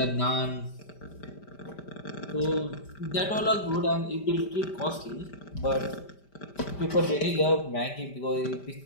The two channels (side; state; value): right; late; 5.1 ms